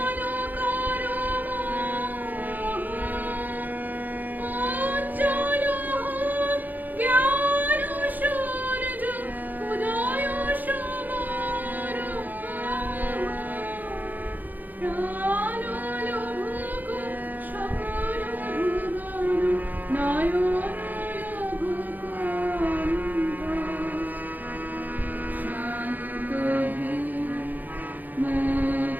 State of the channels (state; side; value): late; left; 0.084 ms